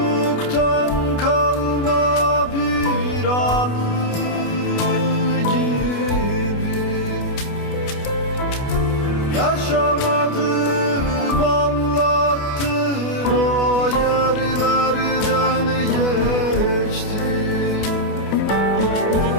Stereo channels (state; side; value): late; right; 28 ms